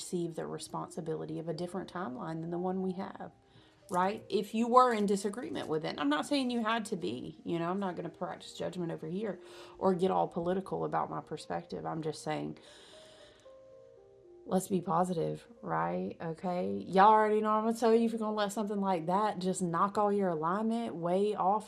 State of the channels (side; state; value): both; identical; correlation 1.00